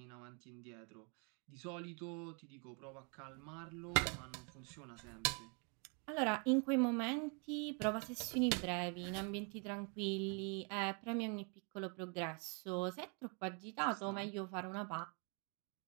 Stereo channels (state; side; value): quieter; left; 36.2 dB